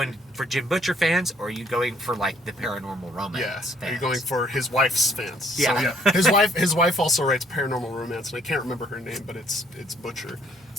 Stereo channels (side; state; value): both; normal; correlation 0.64